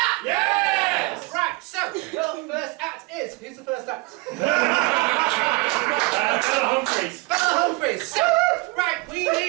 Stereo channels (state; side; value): quieter; left; 25.2 dB